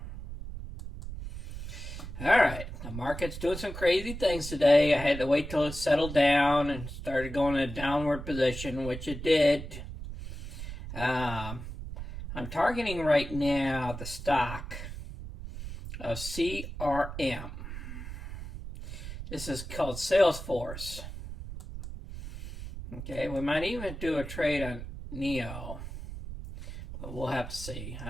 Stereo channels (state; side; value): noise; right; rumble, 9 dB below the sound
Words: Alright, the market's doing some crazy things today. I had to wait till it settled down and started going in a downward position, which it did. I'm targeting right now the stock of CRM. This is called SalesForce. Okay, we might even do a trade on NEO, but we'll have to see.